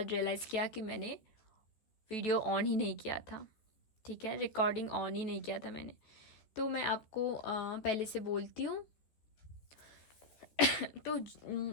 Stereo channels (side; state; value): right; late; 14 ms